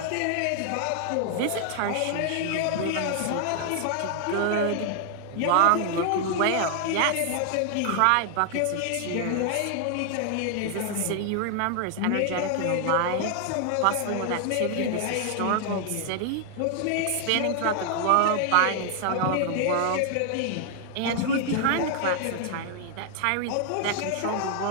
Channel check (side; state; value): both; different; correlation 0.00